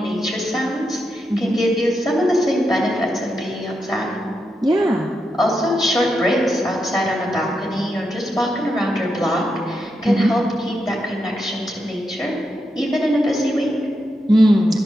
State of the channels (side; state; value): both; normal; correlation 0.85